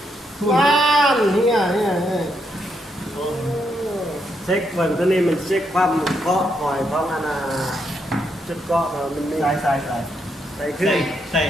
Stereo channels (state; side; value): normal; both; correlation 0.78